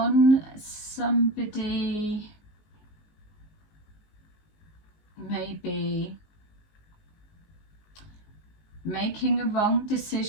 somebody maybe making a wrong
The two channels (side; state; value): right; late; 19 ms